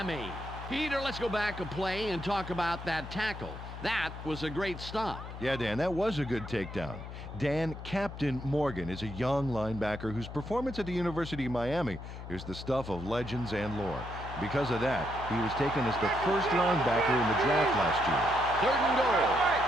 Peter, let's go back a play and talk about that tackle. That was a great stop. Yeah, Dan, that was a good takedown. Dan, Captain Morgan is a young linebacker whose performance at the University of Miami is the stuff of legends and lore. Because of that, he was taken as the first linebacker in the draft last year. 3rd and goal.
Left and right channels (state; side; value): noise; left; hum, 10 dB below the sound